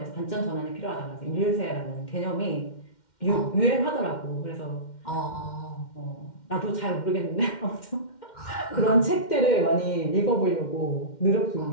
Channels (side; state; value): right; late; 2.1 ms